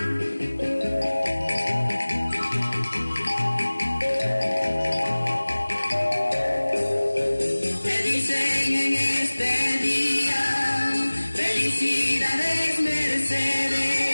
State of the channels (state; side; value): inverted; both; correlation -1.00